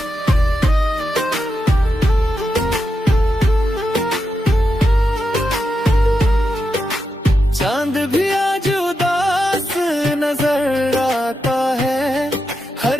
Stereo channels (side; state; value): both; normal; correlation 0.86